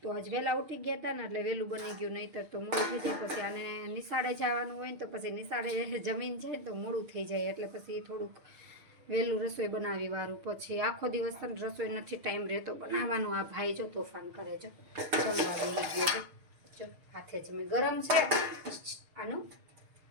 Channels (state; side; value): late; left; 6.5 ms